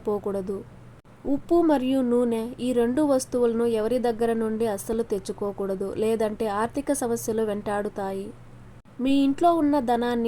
ఉప్పు మరియు నూనె ఈ 2 వస్తువులను ఎవరి దగ్గర నుండి అస్సలు తెచ్చుకోకూడదు. లేదంటే ఆర్థిక సమస్యలు వెంటాడుతాయి. మీ ఇంట్లో ఉన్న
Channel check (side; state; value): both; identical; correlation 1.00